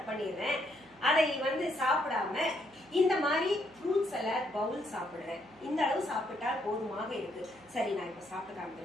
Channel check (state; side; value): noise; right; hum, 29 dB below the sound